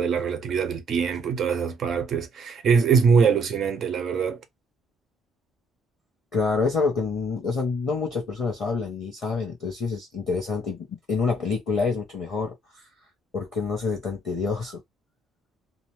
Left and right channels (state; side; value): normal; both; correlation 0.65